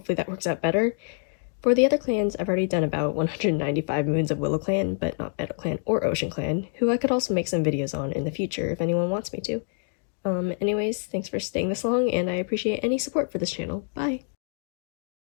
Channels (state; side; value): silent; right; 61 dB below the other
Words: that works out better. For the other clans, I've already done about 195 moons of WillowClan, but not MeadowClan or OceanClan, who I could also make some videos on in the future if anyone wants me to. Anyways, thanks for staying this long, and I appreciate any support for this channel. Bye!